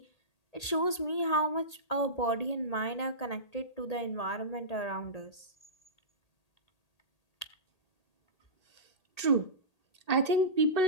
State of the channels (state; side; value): late; right; 1.8 ms